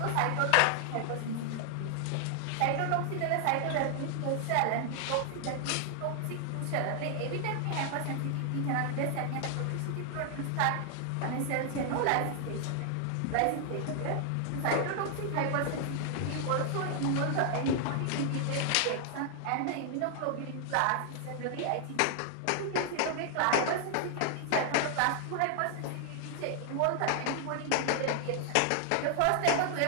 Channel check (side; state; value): both; different; correlation 0.00